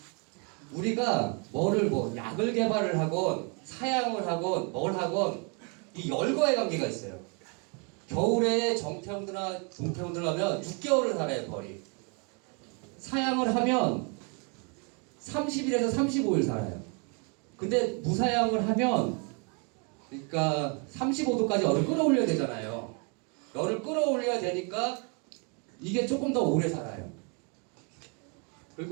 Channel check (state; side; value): quieter; left; 35.6 dB